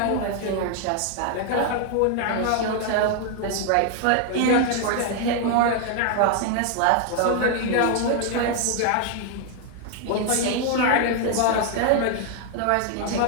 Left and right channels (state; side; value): different; both; correlation 0.00